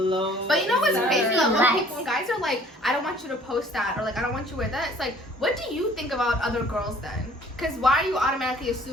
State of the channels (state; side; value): normal; both; correlation 0.54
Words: But you know what's Sir. crazy? Like, when Relax. people, when guys are like, I don't want you to post that, or like, I don't want you to wear that. It's like, what do you think about other girls then? Because why are you automatically